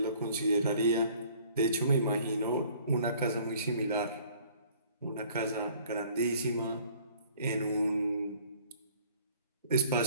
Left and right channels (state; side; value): inverted; both; correlation -0.55